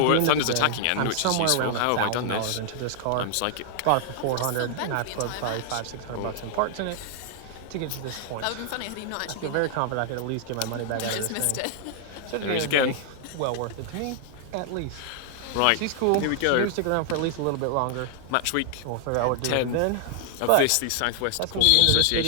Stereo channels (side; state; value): both; different; correlation 0.00